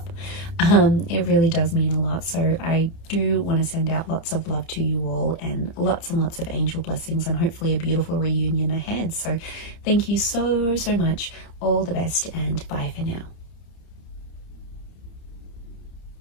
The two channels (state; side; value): late; right; 30 ms